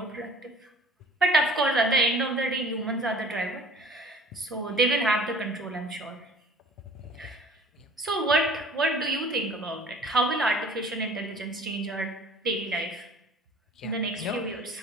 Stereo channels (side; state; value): both; normal; correlation 0.49